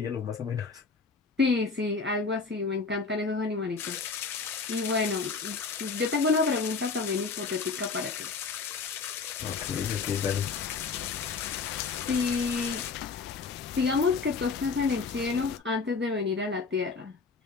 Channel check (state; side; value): quieter; right; 4.6 dB